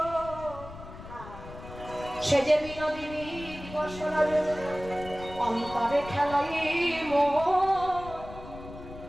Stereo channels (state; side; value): noise; left; rumble, 14 dB below the sound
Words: সে যে বিনোদিনী দিবস অন্তরে খেলাই